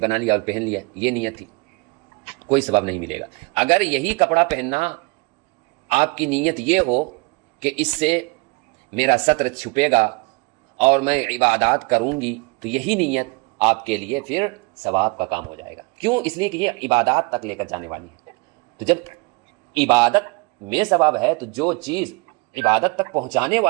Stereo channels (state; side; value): quieter; left; 28.5 dB